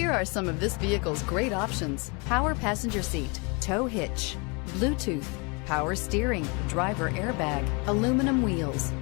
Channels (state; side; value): quieter; right; 31.3 dB